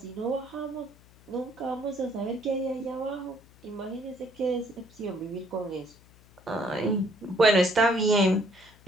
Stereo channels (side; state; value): left; noise; hum, 26 dB below the sound